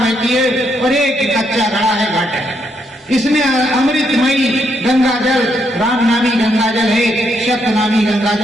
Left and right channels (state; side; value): normal; both; correlation 0.76